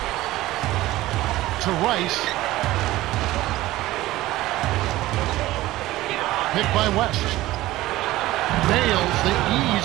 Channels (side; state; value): left; quieter; 16.8 dB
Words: To Rice. Picked by West. Nails the